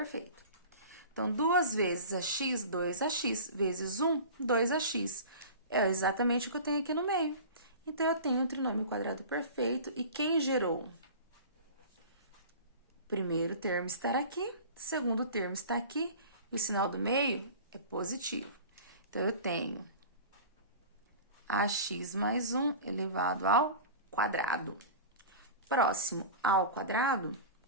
Então, 2 vezes ax, 2ax, vezes 1, 2ax. É exatamente o que eu tenho aqui no meio. Então, eu tenho um trinômio quadrado perfeito. E quem gerou? Primeiro termo está aqui, segundo termo está aqui, e o sinal do meio é positivo. Então, eu tenho ax mais 1 elevado ao quadrado. Próximo ao quadrado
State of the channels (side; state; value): both; inverted; correlation -0.36